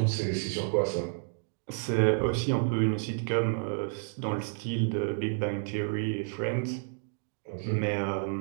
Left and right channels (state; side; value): silent; left; digital silence